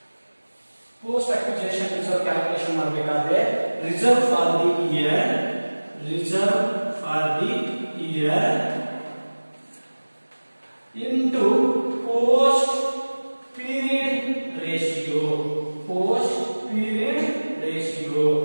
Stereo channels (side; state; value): both; inverted; correlation -1.00